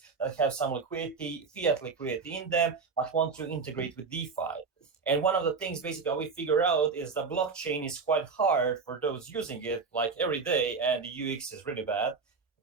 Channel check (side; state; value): left; quieter; 4.9 dB